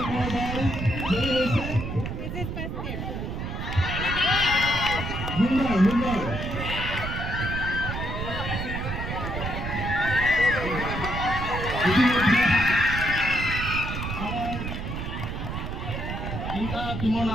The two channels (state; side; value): noise; right; rumble, 5 dB below the sound